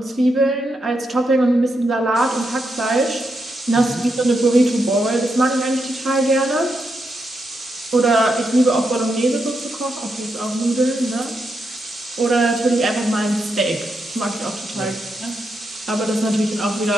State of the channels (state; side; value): normal; both; correlation 0.83